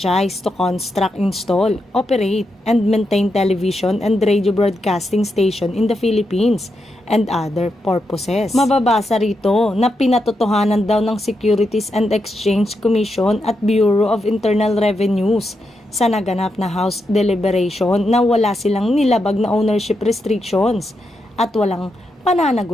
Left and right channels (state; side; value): normal; both; correlation 0.84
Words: to construct, install, operate, and maintain television and radio broadcasting station in the Philippines and other purposes. Mababasa rito na pinatotohanan daw ng Securities and Exchange Commission at Bureau of Internal Revenues sa naganap na House deliberation na wala silang nilabag na ownership restrictions at walang